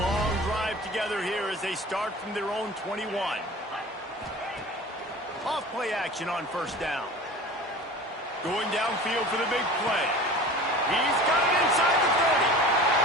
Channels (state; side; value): normal; both; correlation 0.38